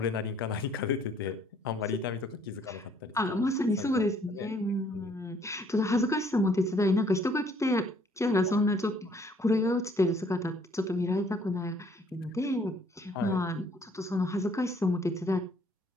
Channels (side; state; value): both; normal; correlation 0.62